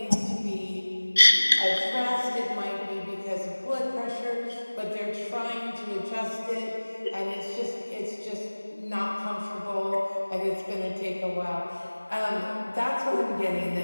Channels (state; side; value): inverted; both; correlation -1.00